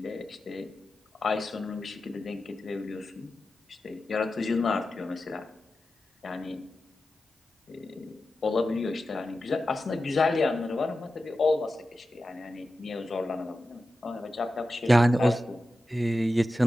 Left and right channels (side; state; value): both; normal; correlation 0.92